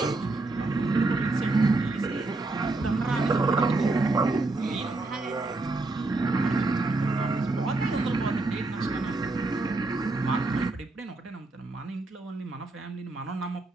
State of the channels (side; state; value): left; quieter; 3.1 dB